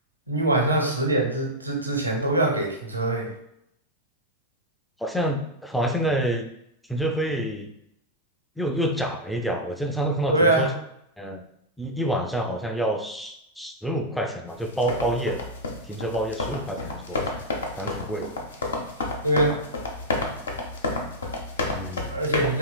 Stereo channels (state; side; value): normal; both; correlation -0.06